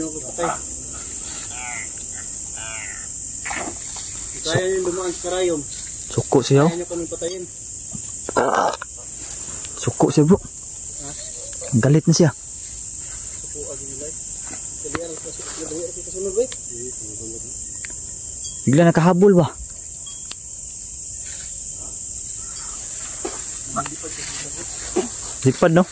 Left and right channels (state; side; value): identical; both; correlation 1.00